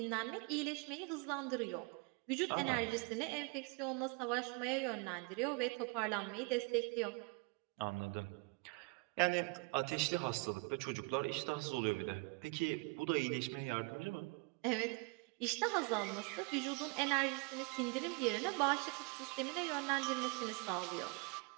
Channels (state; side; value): quieter; left; 30.4 dB